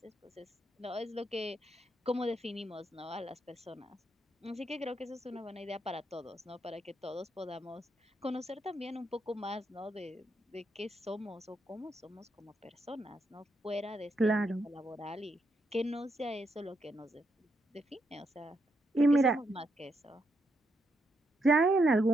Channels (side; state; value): both; normal; correlation 0.79